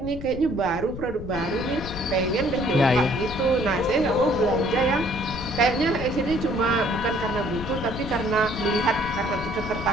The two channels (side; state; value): left; noise; rumble, 10 dB below the sound